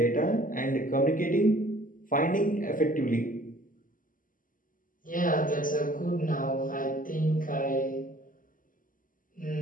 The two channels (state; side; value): late; right; 0.39 ms